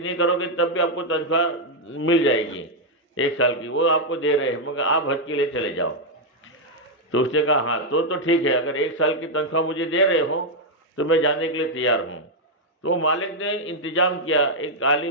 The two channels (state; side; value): normal; both; correlation -0.01